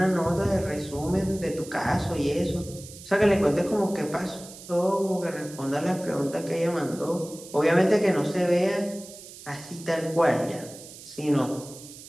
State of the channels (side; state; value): right; noise; hiss, 16 dB below the sound